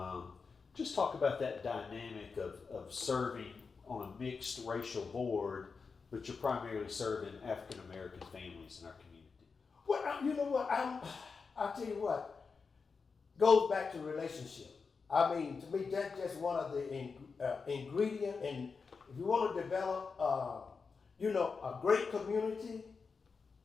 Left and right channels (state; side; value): quieter; right; 5.0 dB